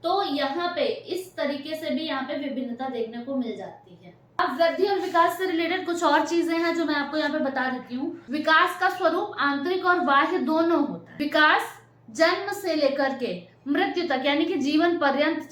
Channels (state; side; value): identical; both; correlation 1.00